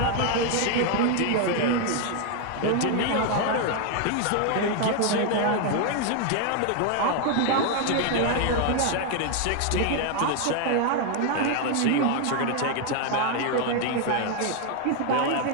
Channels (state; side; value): different; both; correlation 0.00